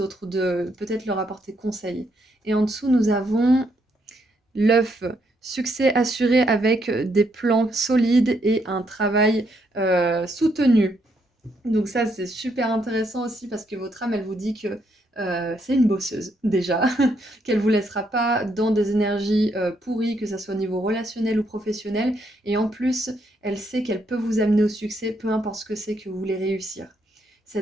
de peut-être leur apporter conseil. Et en dessous, nous avons l'œuf, succès assuré avec des plans solides et un travail soutenu. Donc ça, c'est super intéressant aussi parce que votre âme, elle vous dit que c'est une bosseuse déjà, qu'elle vous laissera pas dans des énergies pourries, que ça soit au niveau relationnel ou professionnel. Et en plus, elle sait qu'elle peut vous amener au succès, peu importe ce que c'est que vous voulez réussir.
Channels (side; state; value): both; normal; correlation 0.75